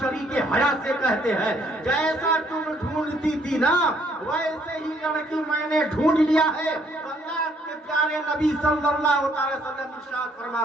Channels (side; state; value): both; normal; correlation 0.66